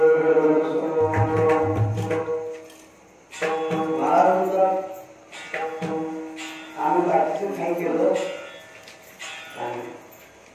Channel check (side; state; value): both; identical; correlation 1.00